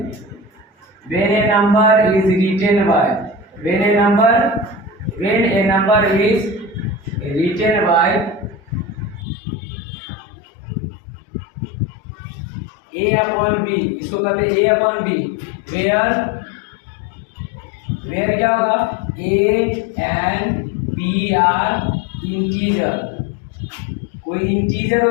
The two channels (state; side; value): drops out; right; at 9.2 s